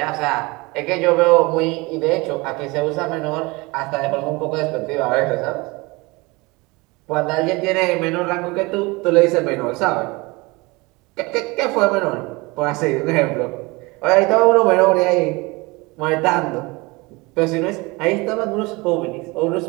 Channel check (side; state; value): left; quieter; 24.6 dB